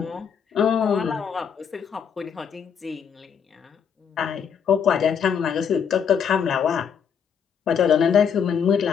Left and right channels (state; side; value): quieter; right; 7.3 dB